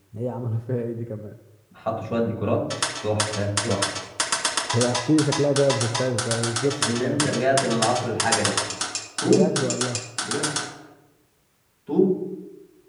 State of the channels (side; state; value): both; identical; correlation 1.00